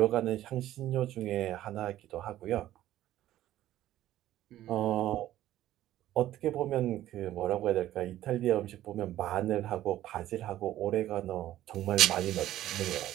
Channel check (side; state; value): left; quieter; 13.6 dB